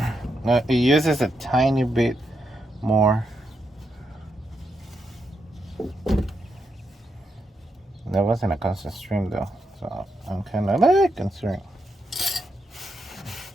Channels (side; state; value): both; normal; correlation 0.82